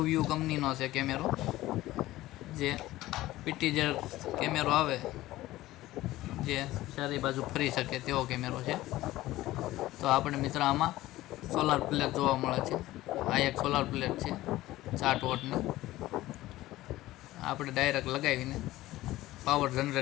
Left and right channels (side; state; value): right; quieter; 16.6 dB